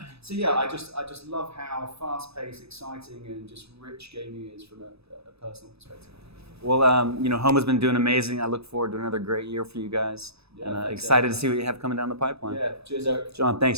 So yeah, I just love how fast-paced, exciting, and just rich gaming is from a personal perspective. Well, Homa's been doing amazing. I look forward to another great year for you guys. Yeah, and thanks, excited Eric. to see what you have coming down the pipeline. Yeah, cheers, Eric. John,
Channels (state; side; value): late; left; 0.79 ms